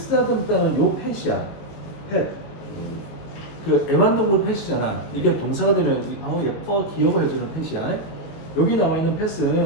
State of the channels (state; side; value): late; right; 19 ms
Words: 요 펫이야. 펫. 그 애완동물 펫이잖아. 이게 동사가 되면 예뻐, 귀여워 해주는 펫이야. 여기 나와 있는